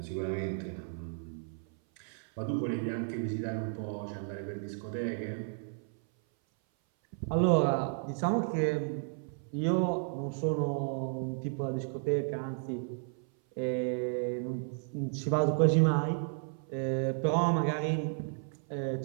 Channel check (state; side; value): silent; left; 56 dB below the other